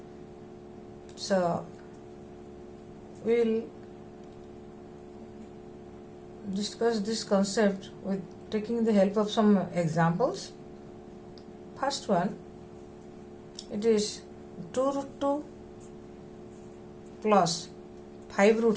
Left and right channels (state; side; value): identical; both; correlation 1.00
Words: So we will discuss this concept with taking the help of some examples. First one, it is 2 root 2 plus 5